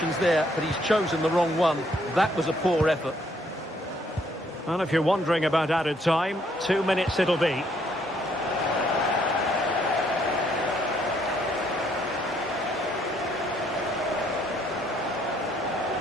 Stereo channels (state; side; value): normal; both; correlation 0.68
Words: there, but he's chosen the wrong one. That was a poor effort. And if you're wondering about added time, 2 minutes it'll be.